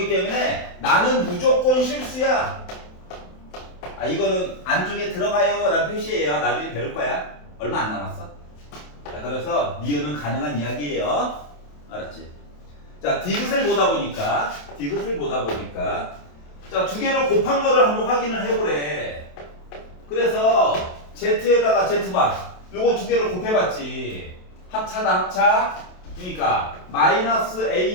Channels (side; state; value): right; late; 27 ms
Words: 때문에 나는 무조건 실수야. 아, 이거는 안쪽에 들어가요 라는 표시예요. 나중에 배울 거야. 얼마 안 남았어. 자, 그래서 니은은 가능한 이야기예요. 알았지? 자, 디귿을 보다 보니까 자, 두 개를 곱한 거를 한번 확인을 해보래. 그래서 Z에다가 Z바 요거 두 개를 곱해봤지. 합차다 합차. 그러니까 마이너스